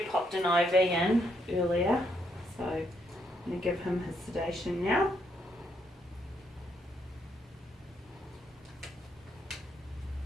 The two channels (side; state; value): both; normal; correlation 0.75